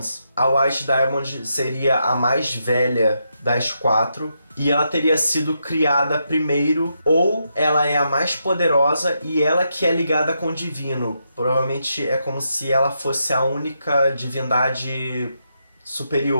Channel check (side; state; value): both; inverted; correlation -0.82